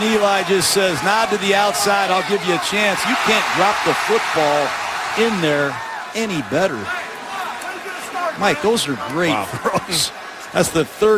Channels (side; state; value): both; identical; correlation 1.00